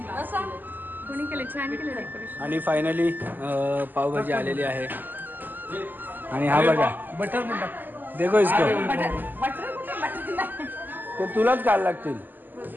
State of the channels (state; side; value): late; left; 0.088 ms